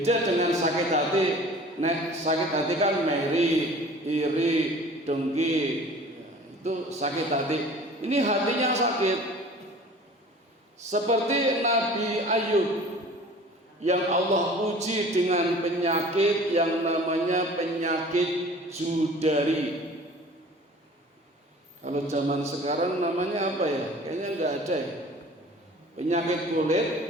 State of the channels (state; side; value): normal; both; correlation 0.45